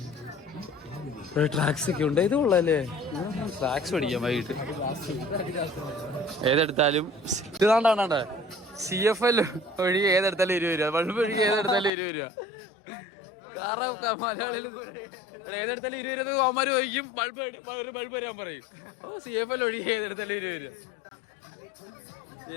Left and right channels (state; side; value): drops out; right; at 11.9 s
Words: ട്രാക്സ് ഒക്കെ ഉണ്ട്. ഇത് കൊള്ളാല്ലേ, ട്രാക്സ് പഠിക്കാം വൈകിട്ട്. ഏതെടുത്താലും ഇതാണ്ടാണ്ടേ CFL ഒഴികെ ഏതെടുത്താലും 20 രൂപ. ബൾബ് ഒഴികെ ഏതെടുത്താലും 20 രൂപ. കാരണം മലയാളികൾ ഏതെടുത്താലും 20 രൂപ അവന്മാര് ചോദിക്കും. ഒരു ബൾബ് വരാൻ പറയും. CFL ഒഴികെ ഏതെടുത്താലും 20 രൂപ.